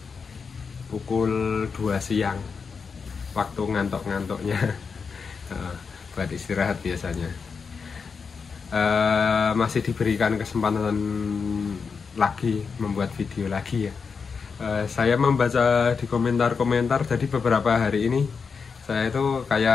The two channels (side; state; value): right; quieter; 5.5 dB